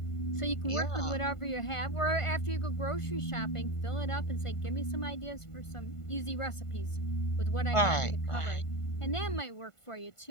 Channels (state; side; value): late; right; 1.5 ms